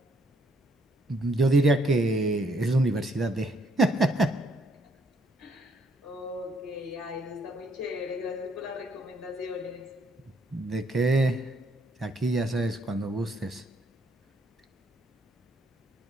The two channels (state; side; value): normal; both; correlation 0.69